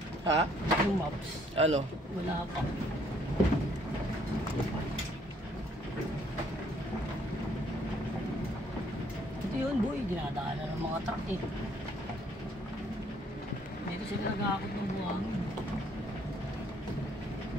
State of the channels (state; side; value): normal; both; correlation 0.65